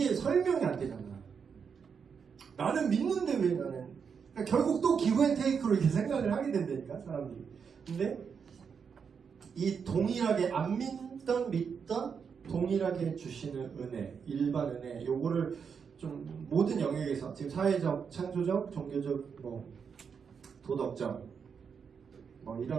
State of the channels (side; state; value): left; quieter; 6.4 dB